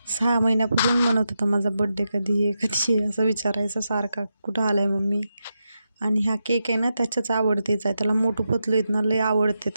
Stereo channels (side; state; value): both; inverted; correlation -0.87